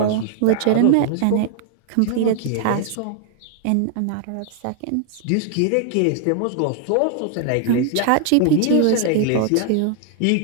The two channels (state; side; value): different; both; correlation 0.00